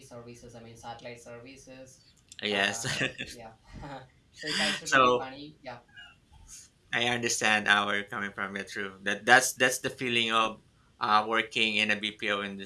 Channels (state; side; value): identical; both; correlation 1.00